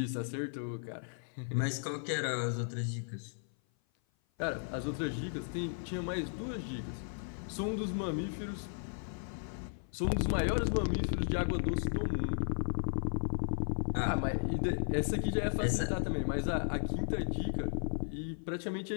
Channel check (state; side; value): silent; right; 54 dB below the other